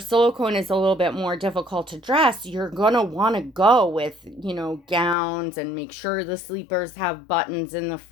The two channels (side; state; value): right; drops out; at 5.2 s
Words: is a little bit more difficult to dress, you're gonna want to go with, gowns, and make sure the sleepers have buttons in the